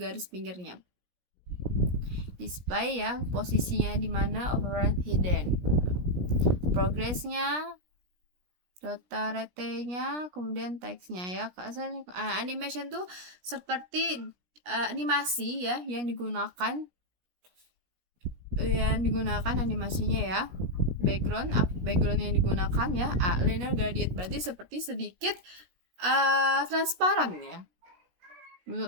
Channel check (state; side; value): late; left; 17 ms